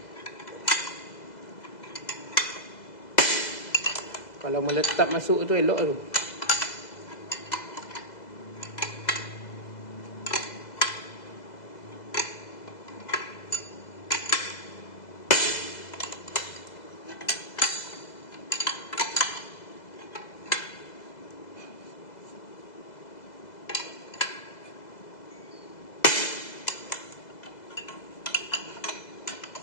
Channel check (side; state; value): right; late; 2.0 ms